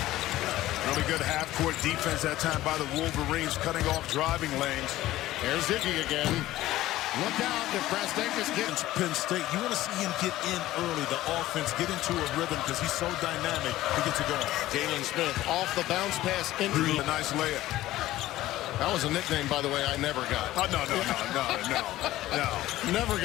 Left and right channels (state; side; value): quieter; right; 15.6 dB